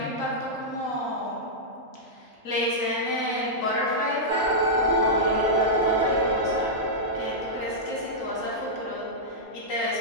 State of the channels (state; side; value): normal; both; correlation -0.10